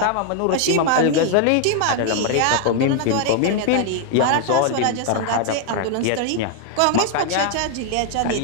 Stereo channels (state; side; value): different; both; correlation 0.00